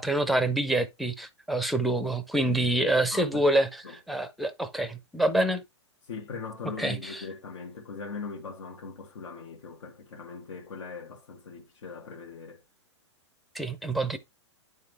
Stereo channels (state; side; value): normal; both; correlation 0.68